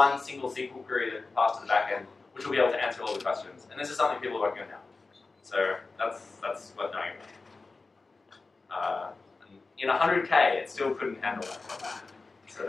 single SQL query that can pass to the backend, which will be able to answer all the questions. And this is something people are working on now. So that's worth knowing about. In 100K, it still couldn't handle that. So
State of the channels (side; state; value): right; quieter; 3.8 dB